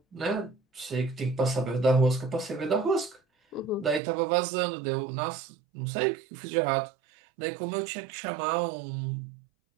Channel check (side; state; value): left; drops out; at 4.0 s